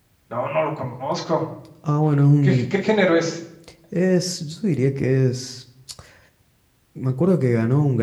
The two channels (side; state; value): both; identical; correlation 1.00